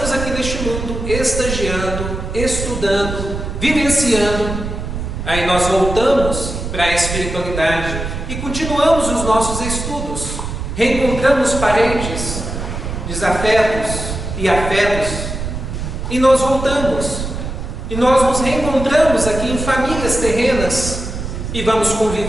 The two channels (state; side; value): noise; right; rumble, 6 dB below the sound